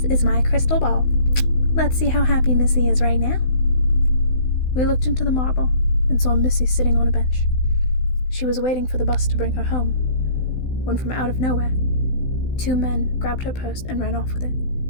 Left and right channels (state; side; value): late; right; 16 ms